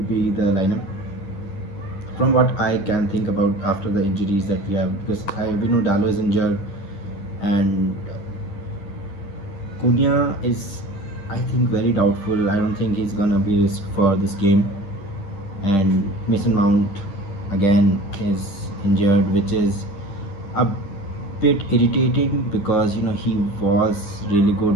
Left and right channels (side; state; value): right; late; 10 ms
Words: be the lineup. From what I can think about after the injuries that we have, because we know Dallo is injured, and Cunha is, I think, very doubtful. I don't think he's gonna be risked for this game, and Mason Mount again is injured, which is a bit irritating because he was really